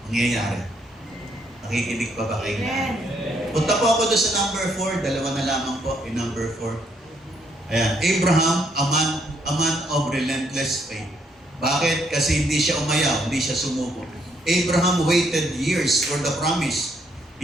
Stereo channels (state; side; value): normal; both; correlation 0.71